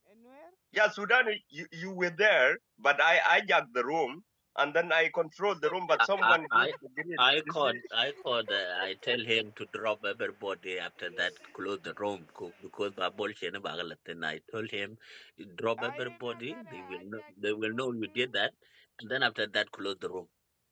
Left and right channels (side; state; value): both; identical; correlation 1.00